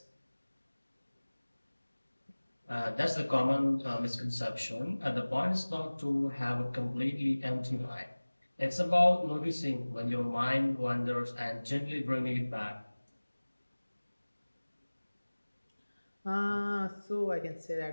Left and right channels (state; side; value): inverted; both; correlation -1.00